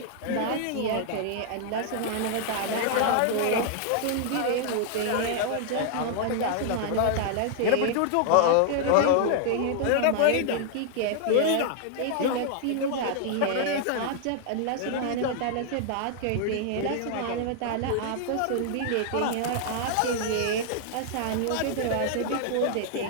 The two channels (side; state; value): both; different; correlation 0.00